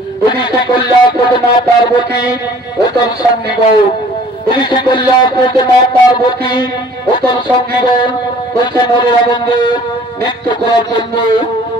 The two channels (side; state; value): both; normal; correlation 0.53